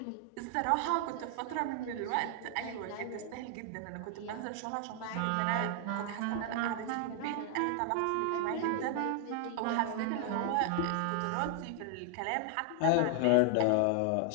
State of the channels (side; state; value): both; different; correlation 0.00